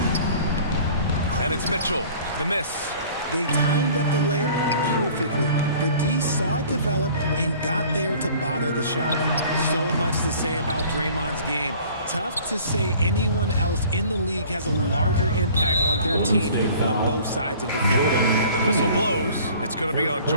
And it's Mitchell, the miss. They timed up the layup perfectly. The D saw it develop and got there to bother the shot. So much to say about Draymond's game. Tough to say anyone else in the league has a larger impact on their team on both sides of the floor. And the whistle blows. It's going to be on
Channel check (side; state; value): both; inverted; correlation -0.49